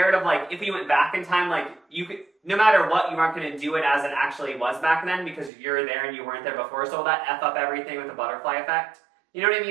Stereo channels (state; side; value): drops out; left; at 5.5 s